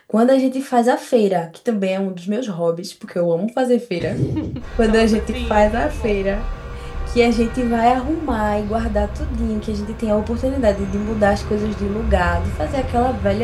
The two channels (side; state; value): both; identical; correlation 1.00